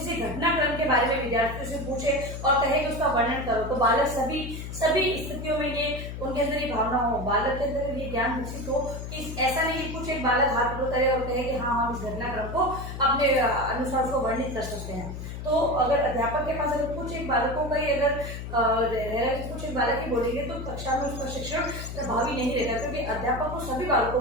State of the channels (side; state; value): left; noise; hum, 8 dB below the sound